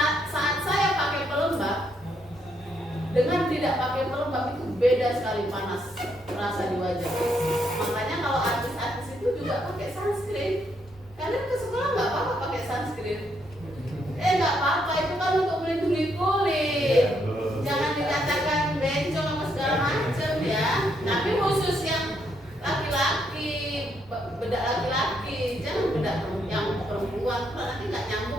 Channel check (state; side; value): normal; both; correlation 0.75